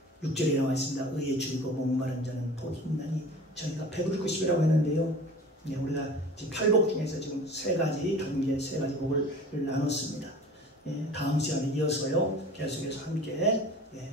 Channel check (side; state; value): both; normal; correlation 0.41